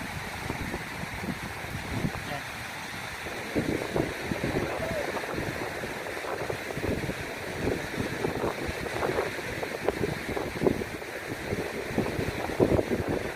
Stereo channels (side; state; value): both; identical; correlation 1.00